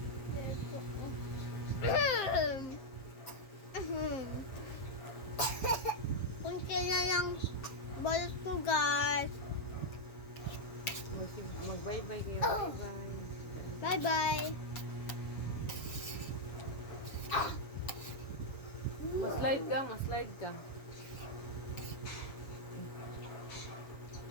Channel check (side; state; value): right; late; 7.6 ms